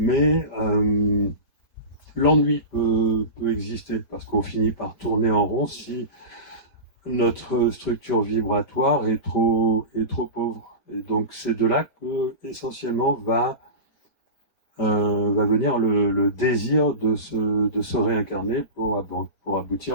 l'ennui peut exister, parce qu'on finit par tourner en rond si notre structure vibratoire est trop pauvre. Et donc c'est de là que essentiellement va venir le désir de se réincarner pour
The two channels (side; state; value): right; late; 5.1 ms